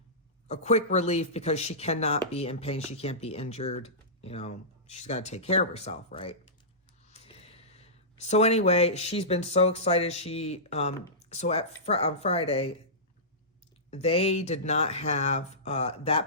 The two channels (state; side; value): normal; both; correlation -0.19